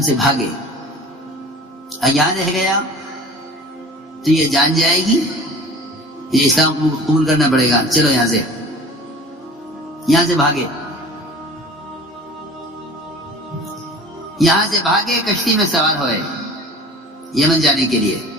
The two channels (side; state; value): both; normal; correlation 0.42